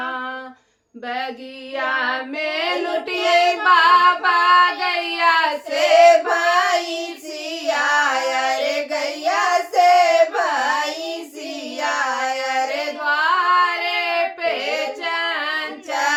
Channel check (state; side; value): identical; both; correlation 1.00